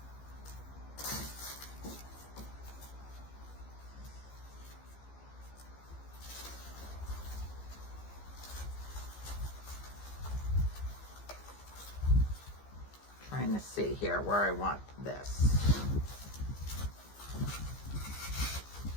Trying to see here where I want this.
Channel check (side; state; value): right; late; 15 ms